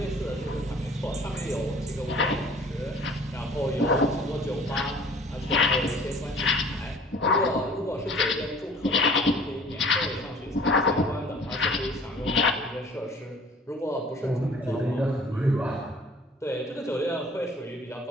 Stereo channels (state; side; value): normal; both; correlation 0.50